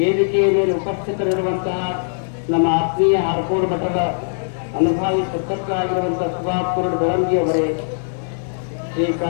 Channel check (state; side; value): silent; right; digital silence